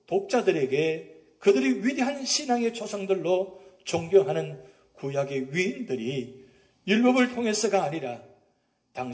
독자들에게 그들이 위대한 신앙의 조상들로 존경하는 구약의 위인들이 율법을 통해서가 아니라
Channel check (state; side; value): identical; both; correlation 1.00